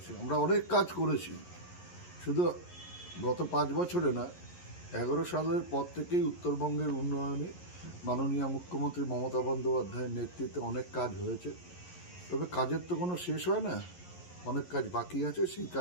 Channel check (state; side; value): late; right; 11 ms